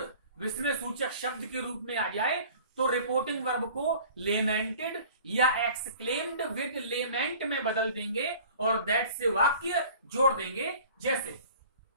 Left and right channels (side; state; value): both; inverted; correlation -0.46